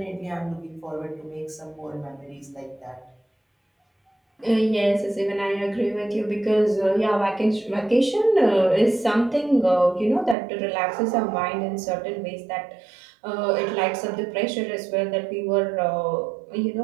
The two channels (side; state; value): left; drops out; at 10.4 s